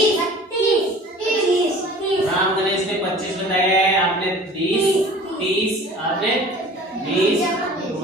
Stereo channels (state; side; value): normal; both; correlation 0.44